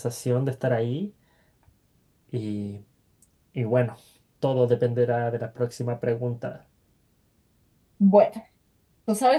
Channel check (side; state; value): both; identical; correlation 1.00